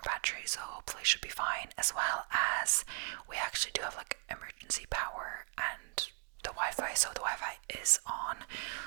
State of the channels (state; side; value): quieter; left; 37.4 dB